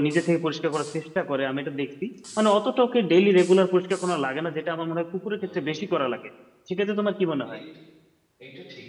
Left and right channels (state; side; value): identical; both; correlation 1.00